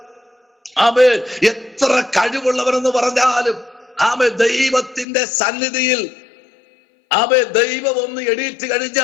ആമേ എത്ര കഴിവുള്ളവരെന്ന് പറഞ്ഞാലും, ആമേ ദൈവത്തിന്റെ സന്നിധിയിൽ ദൈവം ഒന്ന് എണീറ്റ്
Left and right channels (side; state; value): right; drops out; at 5.1 s